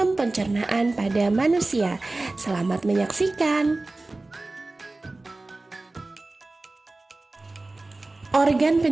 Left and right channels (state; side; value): quieter; left; 3.1 dB